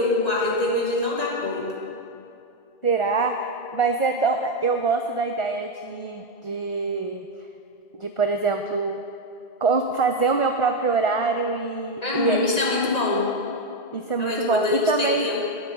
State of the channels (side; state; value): right; late; 1.9 ms